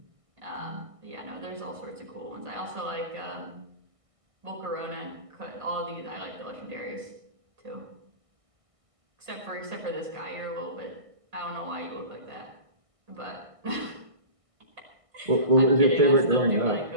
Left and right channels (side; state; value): left; late; 1.6 ms